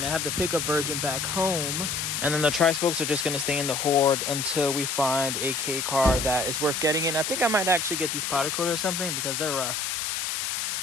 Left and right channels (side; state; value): left; noise; hiss, 2 dB below the sound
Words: I have the pickup version back home, and then the tri-spokes are just gonna stay in the Horde until we find a K car that is worth getting in. I think I might actually get these powder coated or something because they're rough.